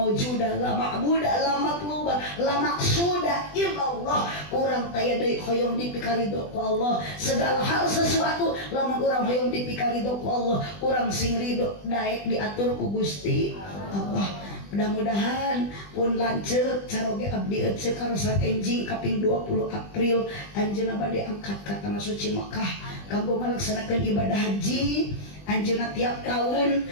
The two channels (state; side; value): late; right; 20 ms